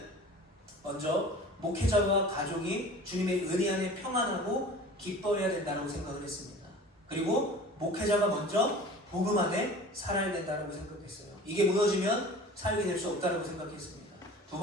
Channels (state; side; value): normal; both; correlation 0.41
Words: 먼저 목회자와 가족이 주님의 은혜 안에 평안하고 기뻐해야 된다고 생각을 했습니다. 그리고 목회자가 먼저 복음 안에 살아야 된다고 생각했어요. 이게 무너지면 사역이 될 수 없다고 생각했습니다. 두